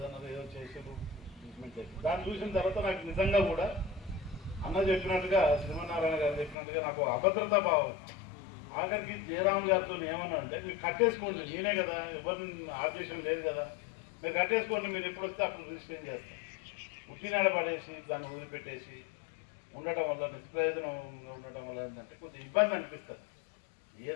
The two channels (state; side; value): drops out; right; at 6.6 s